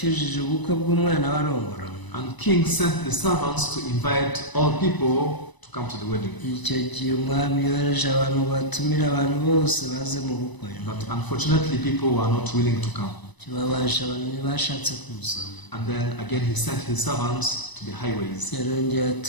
ubukwe bw'umwana warongora. And king sent the servants to invite all people to come to the wedding. Icyo gihe umwami yohereje abantu batumira abantu bose baze mu bukwe. But unfortunately, people were not willing to come. Kibabaje abantu ntibashatse kuza. And then again, he sent his servants to the highways. Yarongeye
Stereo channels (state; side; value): late; right; 1.0 ms